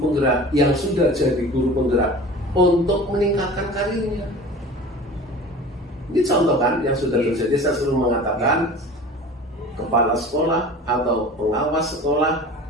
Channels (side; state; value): both; normal; correlation 0.39